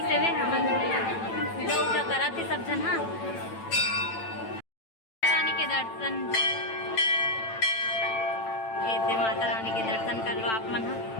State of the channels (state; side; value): late; right; 9.0 ms